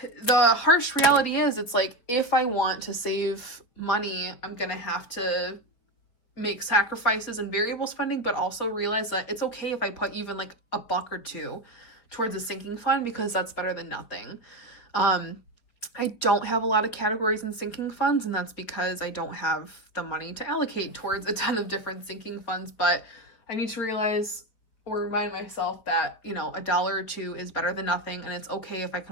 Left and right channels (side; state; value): right; late; 4.7 ms